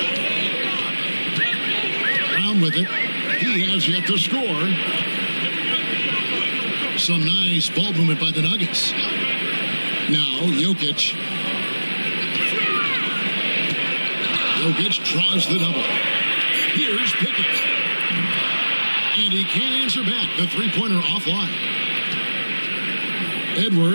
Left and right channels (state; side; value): inverted; both; correlation -1.00